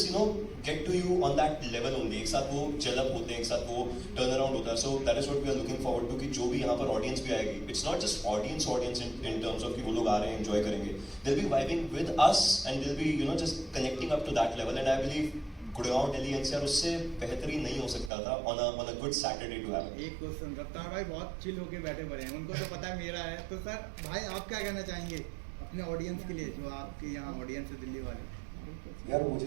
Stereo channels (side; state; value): left; drops out; at 18.1 s